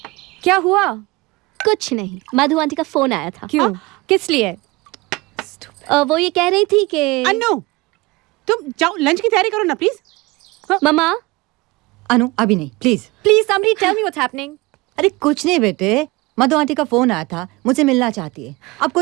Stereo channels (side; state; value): left; quieter; 22.9 dB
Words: क्या हुआ? कुछ नहीं, मधु आंटी का फोन आया था। क्यों? किस लिए? वो ये कह रही थी कि अनु, तुम जाओ लंच की तैयारी करो ना प्लीज। मम्मा। अनु अभी नहीं, please please somebody tell me what's happening. अरे कुछ नहीं बेटे, मधु आंटी का फोन आया था, मुझसे मिलना चाहती है। अब